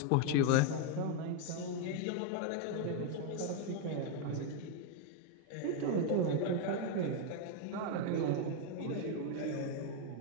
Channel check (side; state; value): both; different; correlation 0.01